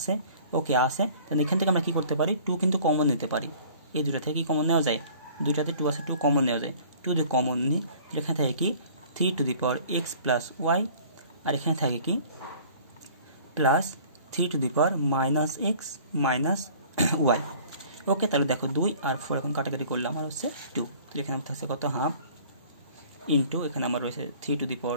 ওকে আছে, তাহলে এখান থেকে আমরা কী করতে পারি 2 কিন্তু কমন নিতে পারি, এই দুটো থেকে কি কমন নেওয়া যায়, দুইটাতে 2 আছে 2 কমন নেওয়া যায়, 2 দিয়ে কমন নিই তাহলে এখানে থাকে কি 3 to the power X plus Y, আর এখানে থাকে কি plus 3 to the power minus X minus Y. Okay, তাহলে দেখো 2 আর 4 এখন কাটাকাটি করলে আমার হচ্ছে 2, তাহলে এখানে আমার থাকছে কত হাফ ইন্টু এখানে আমার রয়েছে 3 to the power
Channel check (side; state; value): both; inverted; correlation -0.50